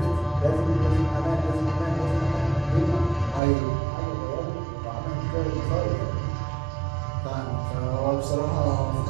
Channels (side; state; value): left; drops out; at 3.4 s